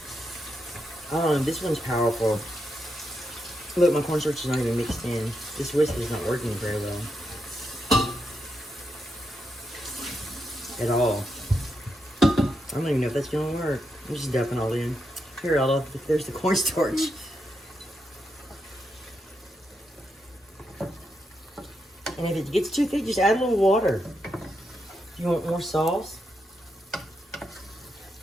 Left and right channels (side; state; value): both; normal; correlation 0.83